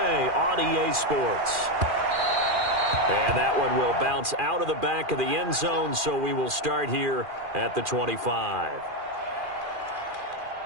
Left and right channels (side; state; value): left; late; 2.4 ms